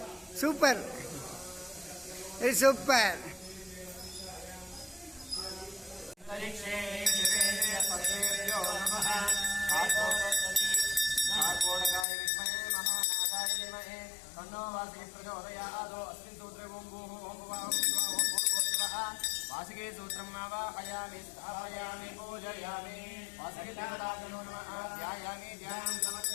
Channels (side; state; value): right; drops out; at 12.1 s